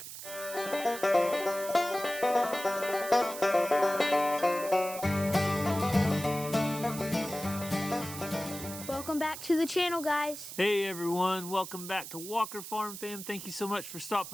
Welcome back to the channel, guys. Hey everyone, welcome back to Walker Farm Fam. Thank you so much for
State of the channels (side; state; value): right; noise; hiss, 10 dB below the sound